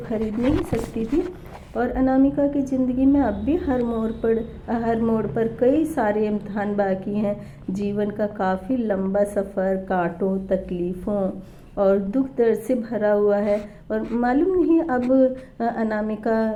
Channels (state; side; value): identical; both; correlation 1.00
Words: खरीद नहीं सकती थी। और अनामिका की ज़िंदगी में अब भी हर मोड़ पर कई सारे इम्तहान बाकी हैं। जीवन का काफ़ी लंबा सफ़र कांटों, तकलीफ़ों और दुख दर्द से भरा हुआ है। और मालूम नहीं अब